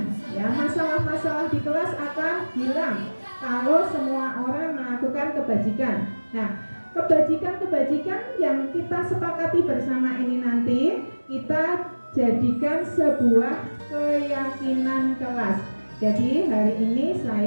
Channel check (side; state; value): both; inverted; correlation -1.00